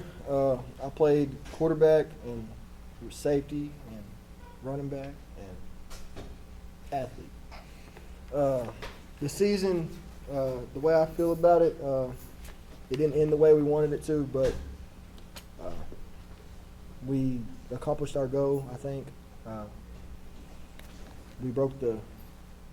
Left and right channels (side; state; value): both; identical; correlation 1.00